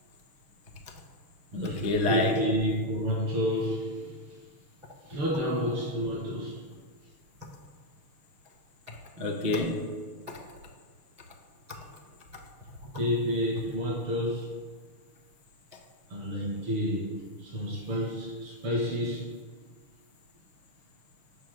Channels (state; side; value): late; left; 6.7 ms